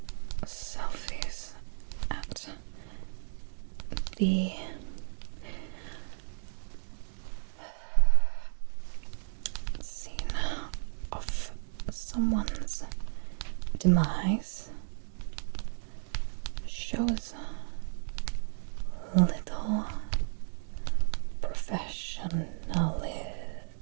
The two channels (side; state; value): left; silent; 56 dB below the other